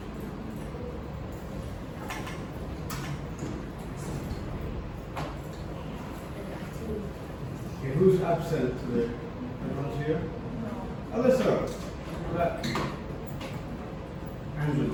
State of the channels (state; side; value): identical; both; correlation 1.00